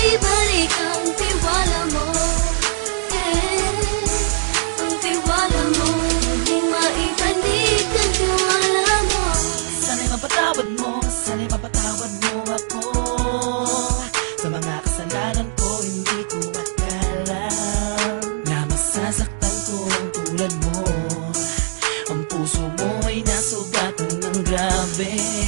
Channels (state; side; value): silent; left; digital silence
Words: ang tiwala mo. Ang tiwala mo, muling maibalik ang tiwala mo. Sana'y mapatawad mo, sana'y mapatawad mo ako sa mga kasalanan ko. Hindi ko akala na masasaktan ko ang tulad mo. Ang puso mo ay nasugatan ng grabe,